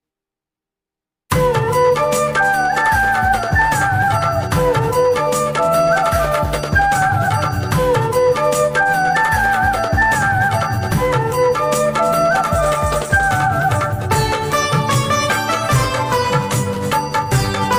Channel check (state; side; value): identical; both; correlation 1.00